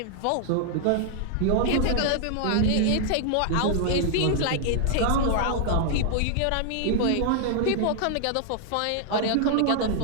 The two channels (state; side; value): different; both; correlation 0.00